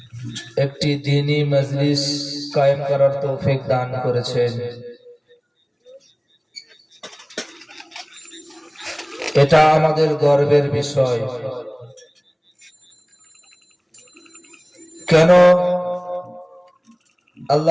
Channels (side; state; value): both; identical; correlation 1.00